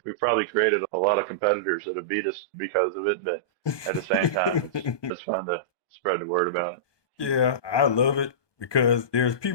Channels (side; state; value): right; late; 1.2 ms